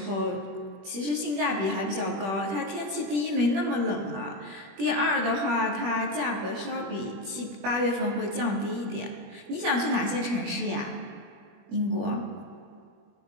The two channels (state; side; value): late; left; 21 ms